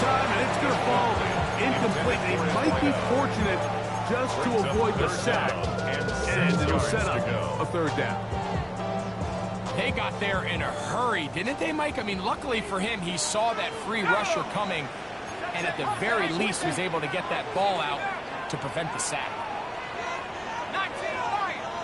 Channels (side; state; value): both; identical; correlation 1.00